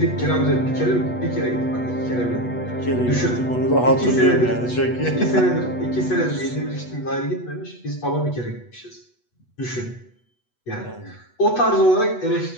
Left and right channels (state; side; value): late; right; 8.1 ms